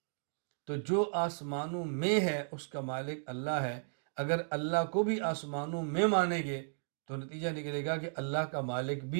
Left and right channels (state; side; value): silent; left; digital silence